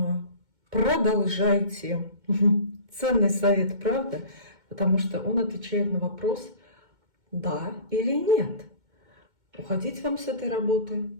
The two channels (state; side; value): late; left; 2.2 ms